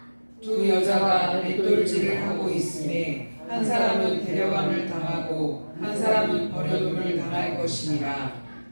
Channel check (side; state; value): both; inverted; correlation -1.00